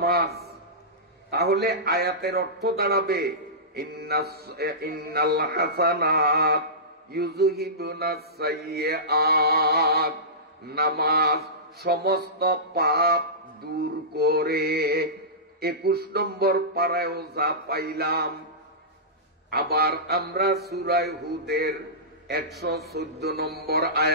তাহলে আয়াতের অর্থ দাঁড়াবে, ইন্নাল হাসানাত ইউযহিবুনাস সাইয়্যাত, নামাজ সমস্ত পাপ দূর করে। 21 নম্বর পারায়ও যা পাইলাম। আবার আমরা সূরা হুদের 114 নম্বর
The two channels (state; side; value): normal; both; correlation -0.19